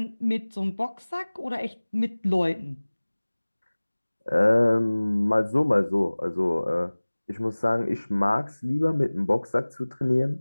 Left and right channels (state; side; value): inverted; both; correlation -1.00